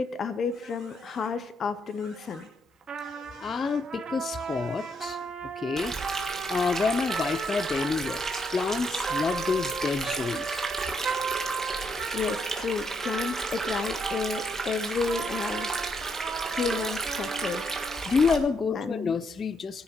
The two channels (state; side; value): normal; both; correlation 0.75